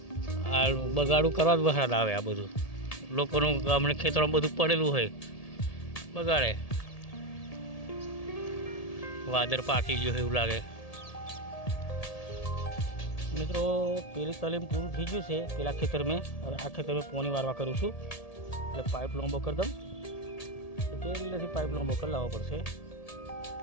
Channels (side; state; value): right; late; 1.8 ms